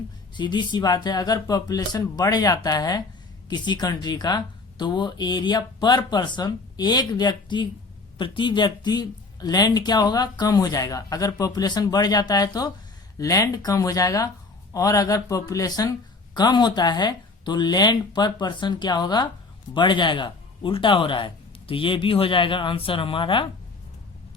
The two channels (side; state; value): right; quieter; 3.7 dB